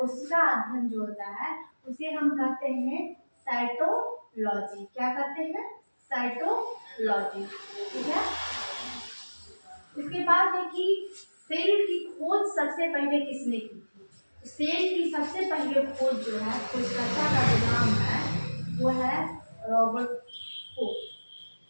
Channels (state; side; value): inverted; both; correlation -1.00